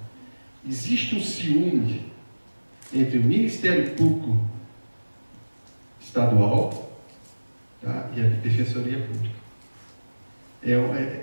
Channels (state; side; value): inverted; both; correlation -1.00